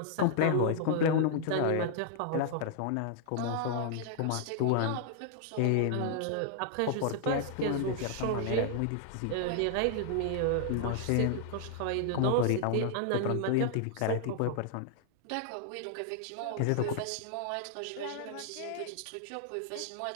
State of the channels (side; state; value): both; different; correlation 0.00